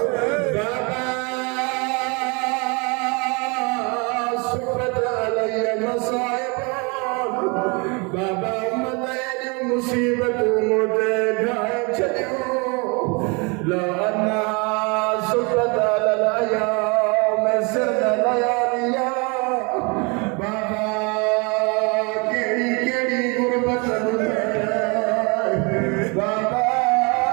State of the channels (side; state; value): left; quieter; 30.5 dB